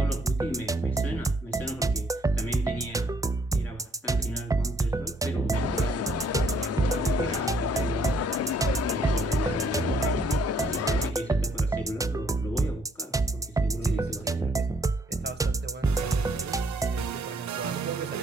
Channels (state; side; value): normal; both; correlation 0.65